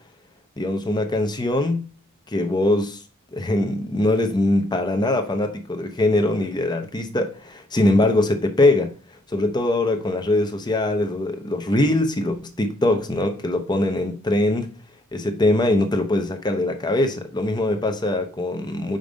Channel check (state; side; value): normal; both; correlation 0.69